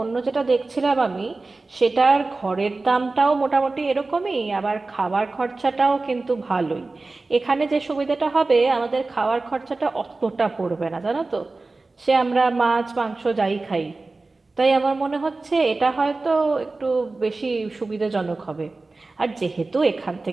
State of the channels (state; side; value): quieter; left; 3.5 dB